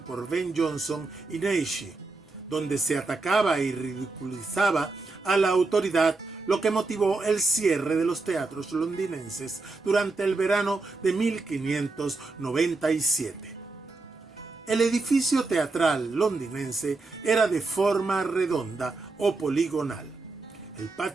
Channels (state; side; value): quieter; left; 3.6 dB